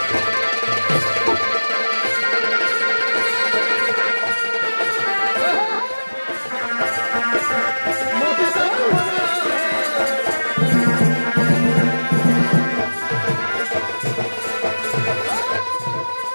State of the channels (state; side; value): inverted; both; correlation -1.00